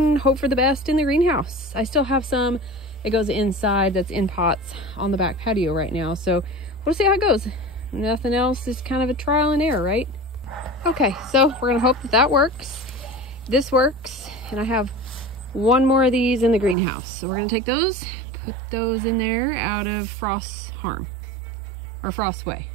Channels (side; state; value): left; drops out; at 16.8 s